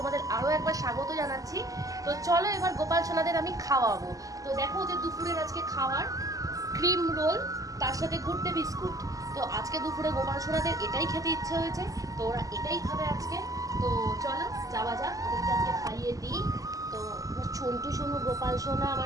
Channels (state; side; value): late; left; 0.17 ms